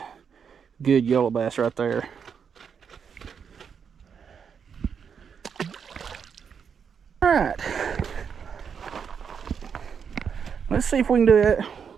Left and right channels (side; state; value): left; quieter; 6.9 dB